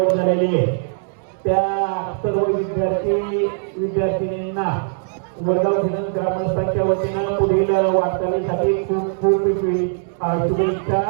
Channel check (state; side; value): silent; left; 65 dB below the other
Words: झालेली आहे. त्या सर्व विद्यार्थिनींना वडगाव घेणं ग्रामस्थांच्या वतीनं पुढील वाटचालीसाठी खूप खूप शुभेच्छा,